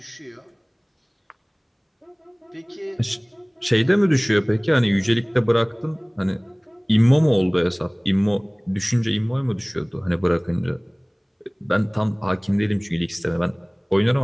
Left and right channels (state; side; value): identical; both; correlation 1.00